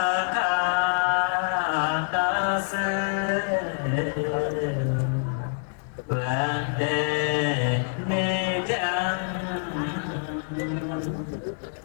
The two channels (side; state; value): right; silent; digital silence